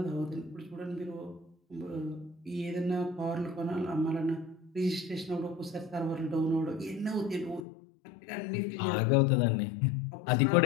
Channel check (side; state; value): right; drops out; at 7.6 s